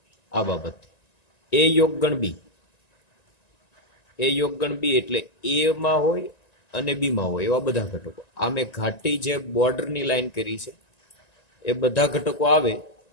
આ બાબત. એ યોગ ગણ બી, એ યોગગણ બી એટલે એ માં હોય અને બી માં હોય એવા બધા ઘટકો. આ મેં ઘાટી જે બોર્ડરની લાઈન કરી છે એ બધા ઘટકો આવે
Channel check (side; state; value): right; late; 1.9 ms